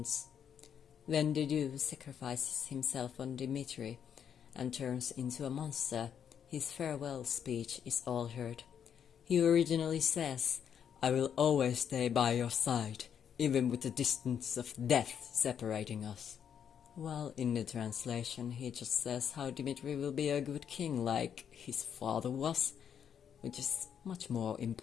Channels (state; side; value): quieter; right; 8.3 dB